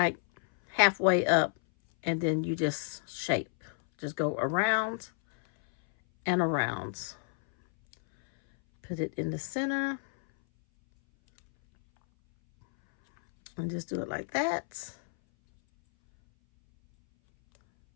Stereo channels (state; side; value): silent; right; 58 dB below the other